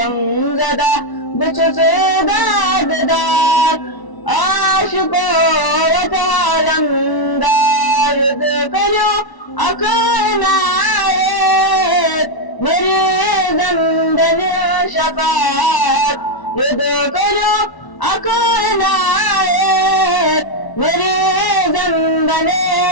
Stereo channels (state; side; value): late; right; 1.0 ms